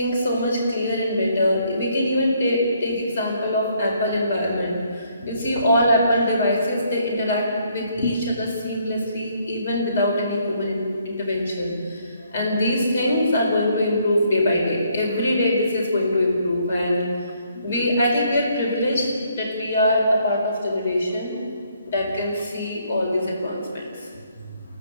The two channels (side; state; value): both; inverted; correlation -0.69